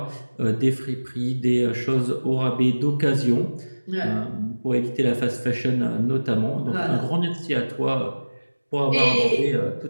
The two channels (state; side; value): inverted; both; correlation -1.00